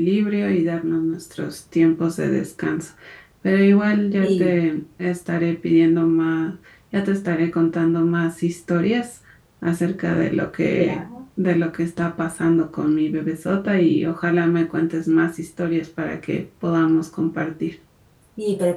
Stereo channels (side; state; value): both; identical; correlation 1.00